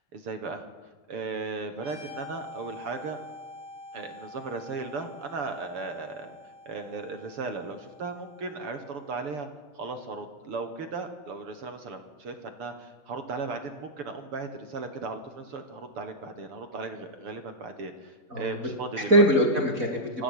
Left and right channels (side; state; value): left; late; 4.1 ms